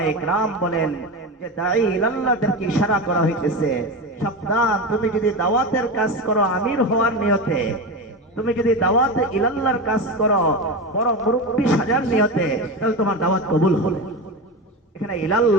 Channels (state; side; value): normal; both; correlation 0.21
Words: কেরাম বলেন যে দাঈ ইলাল্লাহদেরকে ইশারা করা হইতেছে, সাবধান, তুমি যদি দাওয়াতের কাজ করো আমির হওয়ার নিয়তে, তুমি যদি দাওয়াত ইলাল্লাহর কাজ করো বড় মুরব্বি সাজার নিয়তে, তাহলে তোমার দাওয়াত কবুল হবে। এখানে